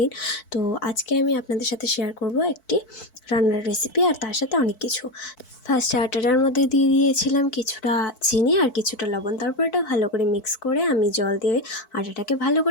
তো আজকে আমি আপনাদের সাথে শেয়ার করব একটি রান্নার রেসিপি আর তার সাথে অনেক কিছু। ফার্স্টে আটাটার মধ্যে দিয়ে দিয়েছিলাম কিছুটা চিনি আর কিছুটা লবণ। তারপর এটা ভালো করে মিক্স করে আমি জল দিয়ে আটাটাকে ভালো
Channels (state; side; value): late; right; 4.6 ms